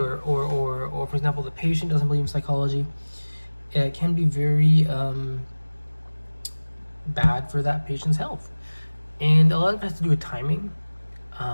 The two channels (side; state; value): both; inverted; correlation -1.00